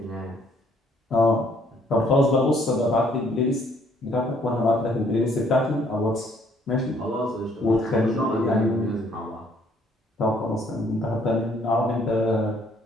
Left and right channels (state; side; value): normal; both; correlation 0.64